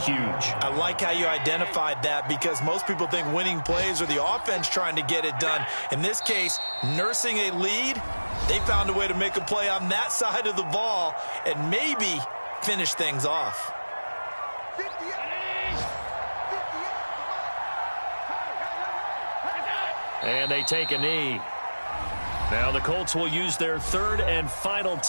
I like how you identified that, because most people think winning plays are the offense trying to get it done. In this case, nursing a lead, they found a way to make a play on that side of the ball and maybe finish things off. And they take a knee. Now the Colts will use their 3rd and final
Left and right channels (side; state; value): both; inverted; correlation -1.00